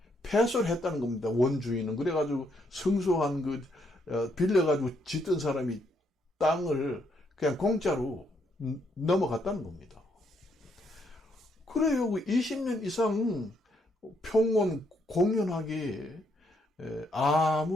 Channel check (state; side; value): normal; both; correlation 0.74